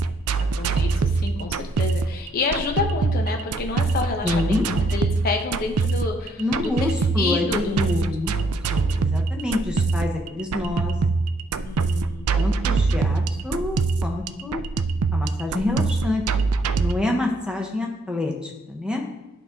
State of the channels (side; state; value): both; normal; correlation 0.70